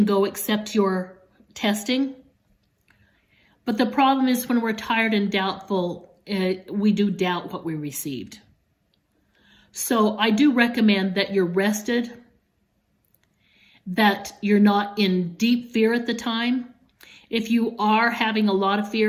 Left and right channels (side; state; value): both; identical; correlation 1.00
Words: go except your testing. But the problem is when we're tired and doubtful, we do doubt what we received. So I do recommend that you're rested, that you're not in deep fear at the time. If you are having a lot of